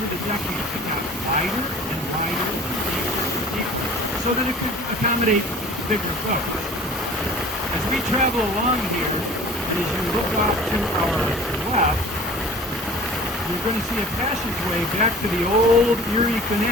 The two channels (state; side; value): normal; both; correlation 0.43